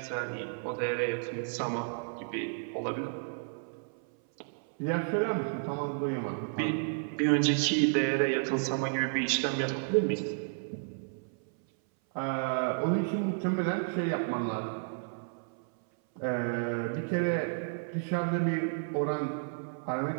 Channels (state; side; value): silent; left; 56 dB below the other